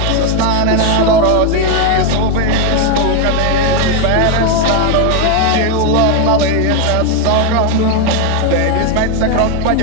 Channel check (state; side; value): different; both; correlation 0.01